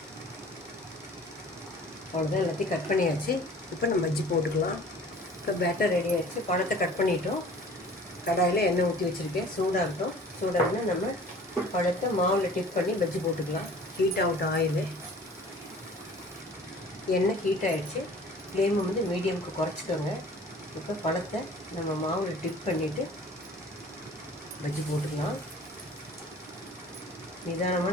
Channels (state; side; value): normal; both; correlation 0.47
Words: அவ்வளோதான், எல்லாத்தையும் கட் பண்ணியாச்சு. இப்போ நம்ம பஜ்ஜி போட்டுக்கலாம். இப்போ பேட்டர் ரெடி ஆகிடுச்சு. பழத்தை கட் பண்ணிட்டோம். கடாயில் எண்ணெய் ஊற்றி வச்சுருக்கேன். சூடாகட்டும். சூடாகனா நம்ம பழத்தை மாவில் டிப் பண்ணி பஜ்ஜி போட்டுக்கலாம். Heat out oil. எண்ணெய் ஹீட் ஆகிடுச்சு. ஃப்ளேமை வந்து மீடியமுக்கு குறைச்சிக்கோங்க. இப்போ பழத்தை நம்ம மாவில் டிப் பண்ணிவிட்டு பஜ்ஜி போட்டுக்கலாம்.